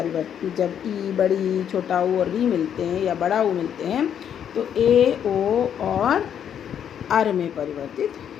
जब ई, बड़ी, छोटा ऊ और री मिलते हैं या बड़ा ऊ मिलते हैं तो ए, ओ और अर में परिवर्तित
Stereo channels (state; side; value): quieter; right; 8.9 dB